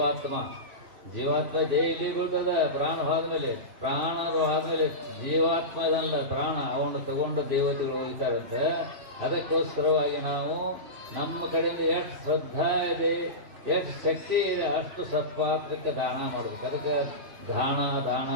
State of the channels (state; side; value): late; left; 2.6 ms